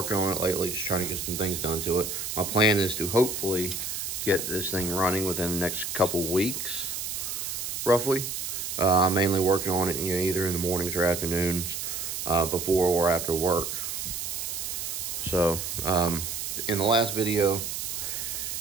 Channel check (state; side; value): noise; right; hiss, 4 dB below the sound